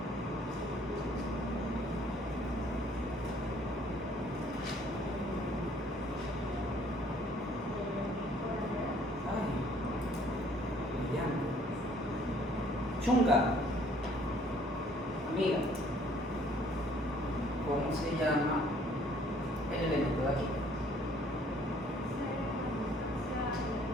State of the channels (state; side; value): normal; both; correlation 0.59